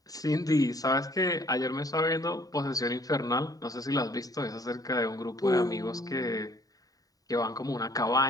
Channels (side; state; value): right; late; 0.18 ms